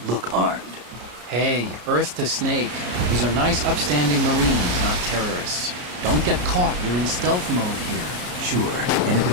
look armed. Hey, Earth to Snake. These are nice, upstanding Marines, not terrorists. Don't get caught. You're in stealth mode here. Sure, and if it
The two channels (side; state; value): left; late; 33 ms